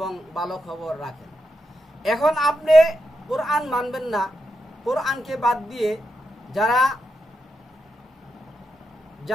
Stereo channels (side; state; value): both; normal; correlation 0.85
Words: ভালো খবর রাখেন। এখন আপনি কোরআন মানবেন না, কোরআনকে বাদ দিয়ে